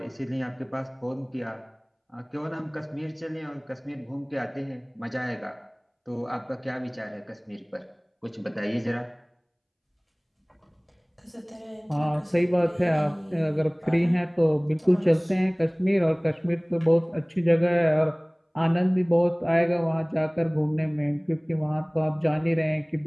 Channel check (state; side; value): identical; both; correlation 1.00